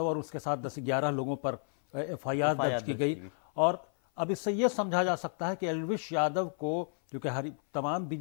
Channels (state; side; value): silent; right; 56 dB below the other